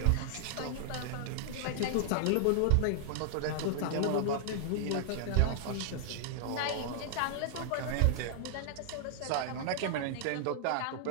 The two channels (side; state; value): both; different; correlation -0.01